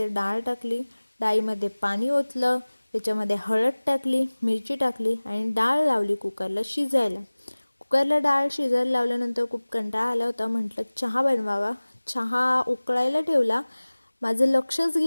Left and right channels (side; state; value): both; inverted; correlation -1.00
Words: डाळ टाकली, डाळीमध्ये पाणी ओतलं, त्याच्यामध्ये हळद टाकली, मिरची टाकली आणि डाळ लावली कुकरला शिजायला. कुकरला डाळ शिजायला लावल्यानंतर खूप कंटाळा आला होता. म्हटलं चहा बनवावा. चहा उकळायला ठेवला. माझं लक्षच